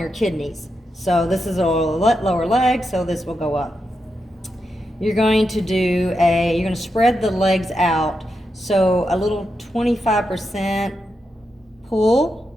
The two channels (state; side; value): normal; both; correlation 0.86